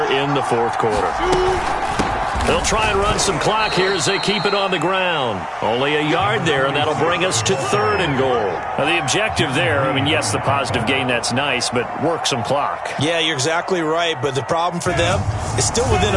in the 4th quarter. They'll try and run some clock here as they keep it on the ground. Only a yard there, and that'll bring us to 3rd and goal. Now, the objective there, I mean, yes, the positive gain, that's nice, but work some clock. Yeah, you're exactly right, but the problem for them is still within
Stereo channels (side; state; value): both; identical; correlation 1.00